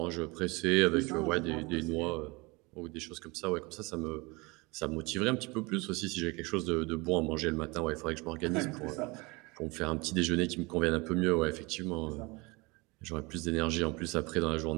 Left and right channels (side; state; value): left; quieter; 25.6 dB